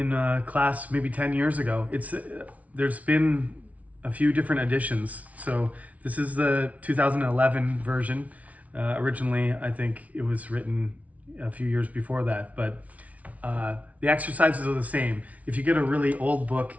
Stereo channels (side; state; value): left; late; 0.069 ms